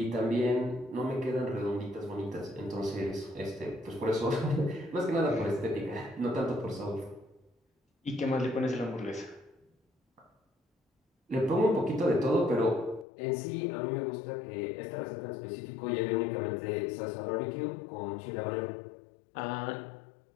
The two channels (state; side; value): drops out; right; at 13.1 s